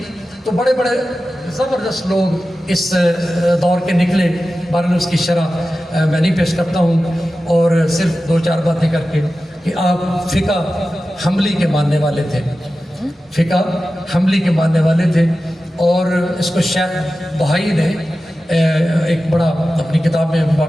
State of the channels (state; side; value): normal; both; correlation 0.94